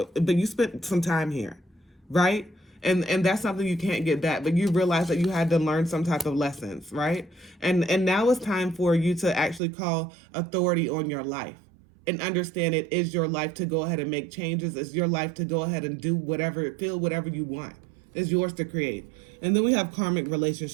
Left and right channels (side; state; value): left; drops out; at 9.6 s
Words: but you spent some time here, right? And that's something you can't get back, but you realize that you had to learn some type of lessons, right? And now it's time for you to actually call authority on your life and understand it is your life to go ahead and make changes. It's your life to go ahead and do whatever, feel whatever you want. It's yours to create. And then we have karmic